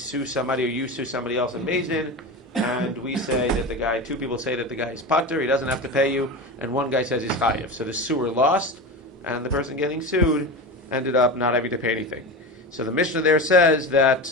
somebody or you sue somebody else in beit-din, and we say that two people say that the guy is pater, he doesn't have to pay you, and one guy says he's chayev. So the suer lost, and the person getting sued ended up not having to pay anything. So the Mishnah there says that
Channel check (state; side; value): normal; both; correlation 0.24